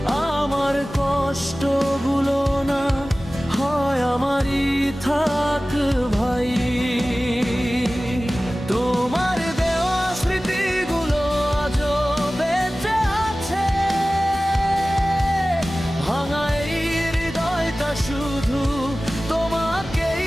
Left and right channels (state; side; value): normal; both; correlation 0.97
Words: আমার কষ্টগুলো না হয় আমারই থাক ভাই। তোমার দেওয়া স্মৃতিগুলো আজও বেঁচে আছে, ভাঙা এই হৃদয়টা শুধু তোমাকেই